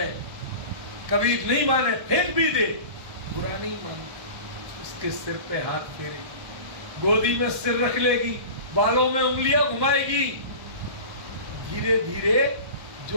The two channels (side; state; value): left; late; 1.1 ms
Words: कभी नहीं माने फेंक भी दे, बुरा नहीं मानती, उसके सिर पे हाथ फेरे, गोदी में सिर रख लेगी, बालों में उंगलियां घुमाएगी। धीरे धीरे